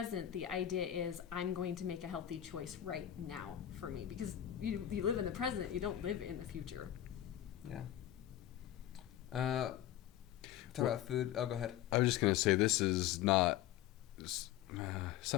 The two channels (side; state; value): right; quieter; 12.1 dB